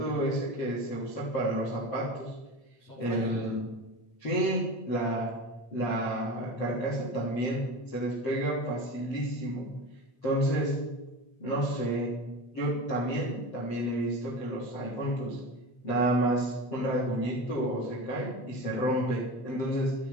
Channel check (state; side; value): late; right; 7.7 ms